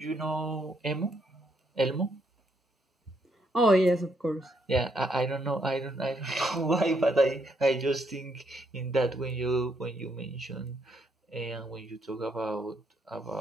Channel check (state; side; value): normal; both; correlation 0.74